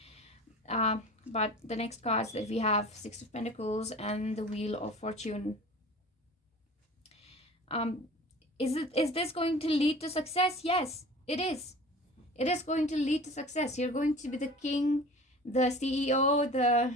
But the next cards that we have, Six of Pentacles and the Wheel of Fortune. Is this going to lead to success? Yes, it is. It is going to lead to success. You're going to be the king, the CEO,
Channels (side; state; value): both; normal; correlation 0.40